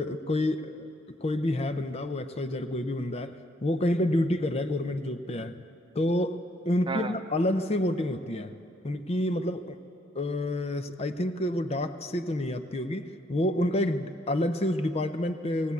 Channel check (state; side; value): normal; both; correlation 0.69